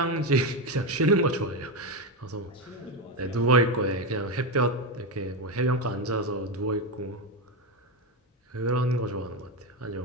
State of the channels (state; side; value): normal; both; correlation 0.12